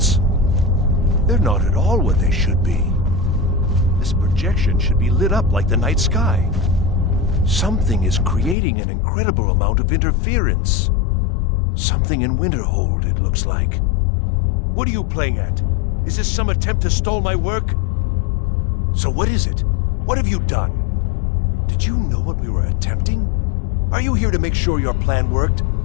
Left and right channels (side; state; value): right; drops out; at 8.6 s